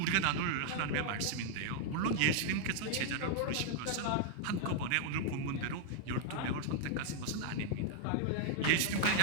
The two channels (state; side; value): different; both; correlation -0.01